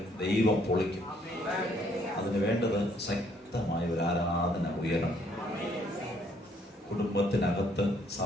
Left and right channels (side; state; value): both; normal; correlation 0.66